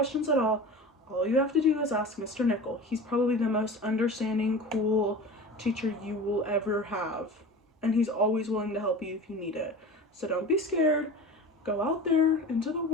at all you have to do is ask Mr. Nichol. He's probably the most understanding, cool teacher you will ever have. And he's always willing to help you if you need it. So don't be scared. Go out there into the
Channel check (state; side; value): normal; both; correlation 0.34